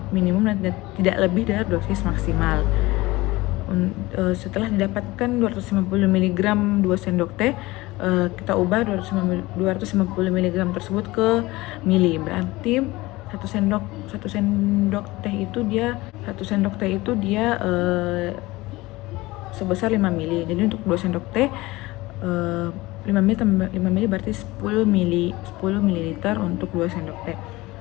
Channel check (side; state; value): right; quieter; 20.2 dB